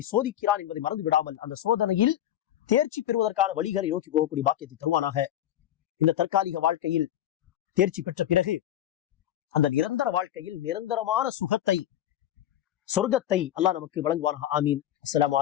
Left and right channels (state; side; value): quieter; right; 12.0 dB